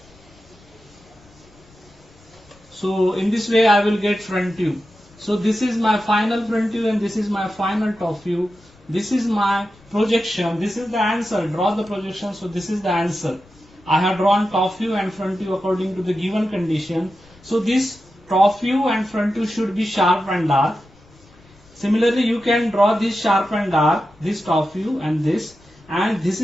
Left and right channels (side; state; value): left; noise; rumble, 28 dB below the sound